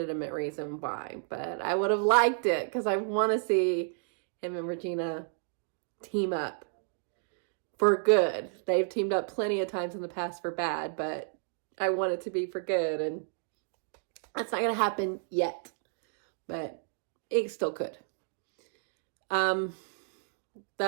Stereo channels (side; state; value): left; silent; digital silence